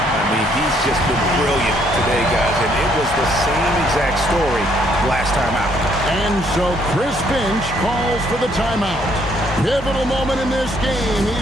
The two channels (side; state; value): both; normal; correlation 0.68